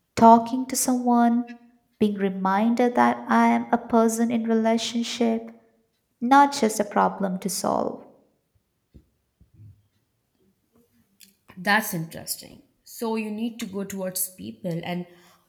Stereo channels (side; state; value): both; identical; correlation 1.00